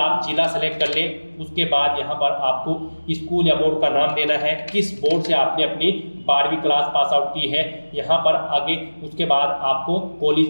जिला सेलेक्ट कर लें। उसके बाद यहाँ पर आपको स्कूल या बोर्ड का नाम देना है, किस बोर्ड से आपने अपनी 12वीं क्लास पास आउट की है यहाँ पर आगे। उसके बाद आपको कॉलेज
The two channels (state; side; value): inverted; both; correlation -1.00